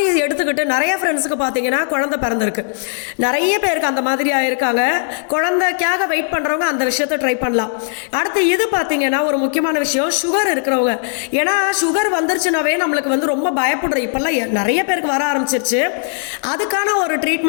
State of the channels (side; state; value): right; silent; 60 dB below the other